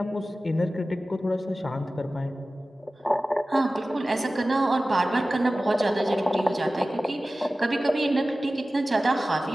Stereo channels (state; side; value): normal; both; correlation 0.96